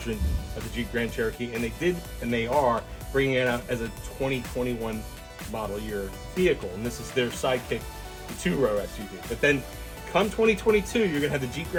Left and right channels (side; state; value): both; identical; correlation 1.00